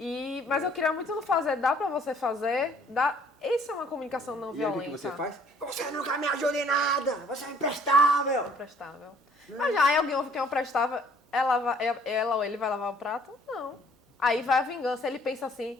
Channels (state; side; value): normal; both; correlation 0.58